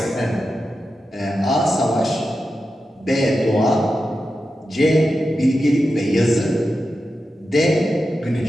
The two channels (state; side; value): normal; both; correlation 0.90